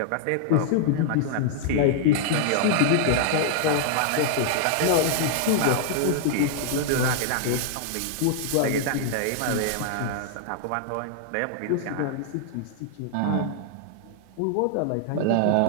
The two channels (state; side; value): different; both; correlation -0.01